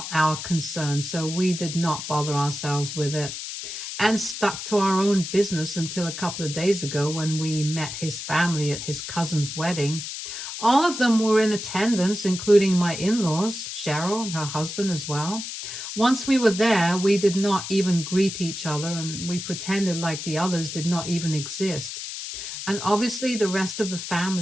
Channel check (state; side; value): noise; left; hiss, 7 dB below the sound